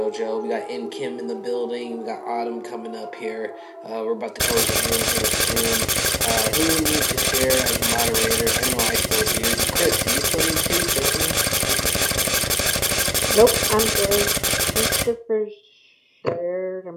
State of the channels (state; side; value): identical; both; correlation 1.00